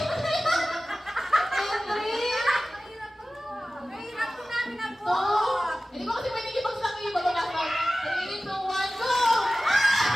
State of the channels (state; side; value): normal; both; correlation 0.96